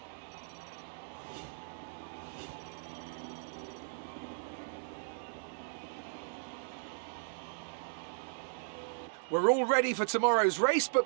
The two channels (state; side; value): silent; left; digital silence